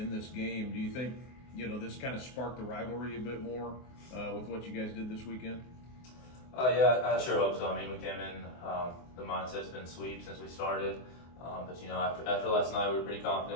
this game. Do you think, this kind of sparked the rivalry a bit more with what you guys did this weekend? Yeah, I sure hope so. I mean, we came in, the mindset's been sweep since we started. But after last night, we were pretty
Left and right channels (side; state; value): right; late; 24 ms